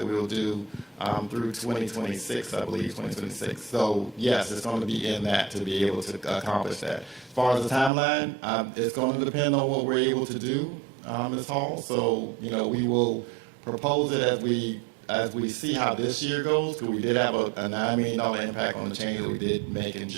we will do through 2026, I believe, 2026. So yes, it's going to be in that to be able to accomplish that. As far as the timeline, it's going to depend on what we're able to do, Ms. Hall. So, we will propose it as we see how this year goes, because we did have a $9 million impact on the change that we did make in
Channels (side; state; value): left; drops out; at 7.9 s